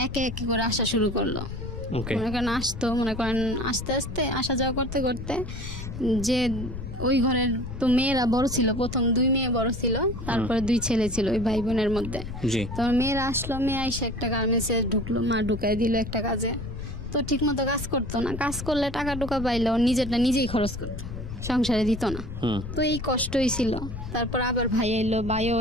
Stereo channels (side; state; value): left; noise; rumble, 8 dB below the sound